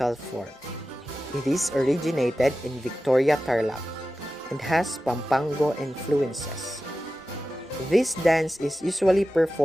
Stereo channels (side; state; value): both; normal; correlation 0.94